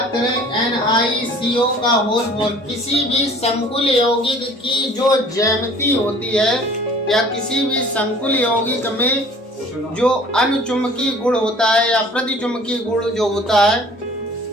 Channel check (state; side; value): normal; both; correlation 0.50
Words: करें NiCO का होल 4, किसी भी संकुल यौगिक की जो ज्यामिति होती है या किसी भी संकुल यौगिक में जो अनुचुंबकीय गुण होता है या प्रतिचुंबकीय गुण जो होता है,